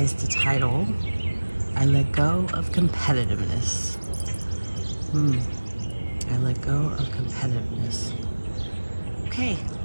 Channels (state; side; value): inverted; both; correlation -1.00